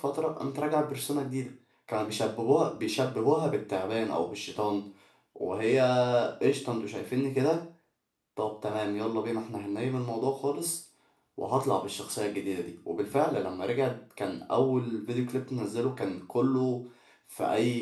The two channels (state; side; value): identical; both; correlation 1.00